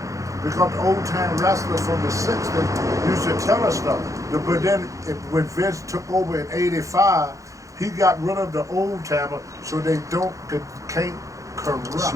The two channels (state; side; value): late; left; 0.16 ms